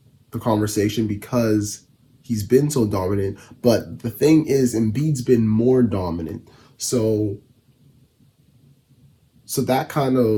the conversation because he's been so dominant, but the thing is, Embiid's been more dominant. So that kind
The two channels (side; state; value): both; identical; correlation 1.00